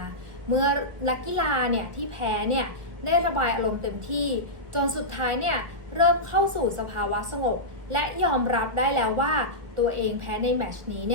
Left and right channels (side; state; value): left; late; 1.4 ms